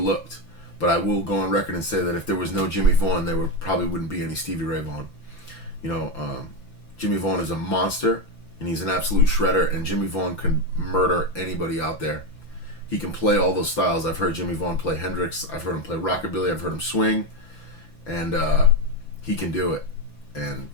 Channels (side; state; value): right; late; 6.0 ms